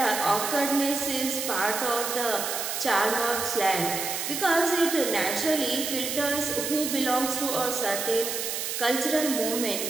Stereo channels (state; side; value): noise; right; hiss, 3 dB below the sound